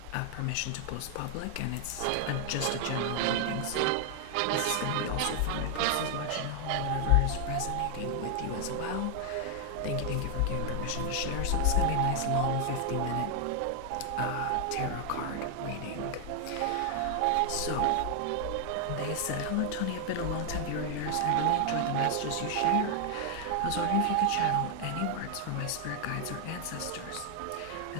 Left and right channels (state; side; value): different; both; correlation 0.00